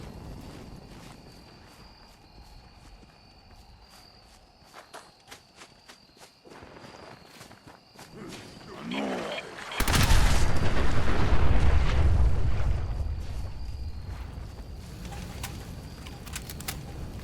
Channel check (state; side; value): identical; both; correlation 1.00